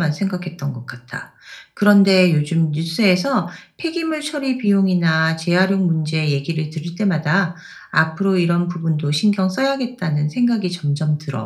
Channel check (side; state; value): both; identical; correlation 1.00